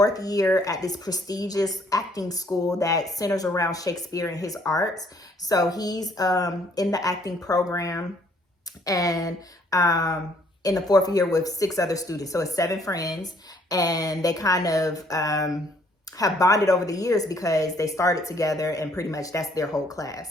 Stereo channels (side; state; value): both; normal; correlation 0.64